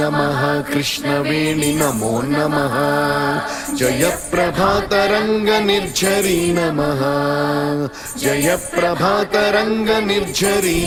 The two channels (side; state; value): both; identical; correlation 1.00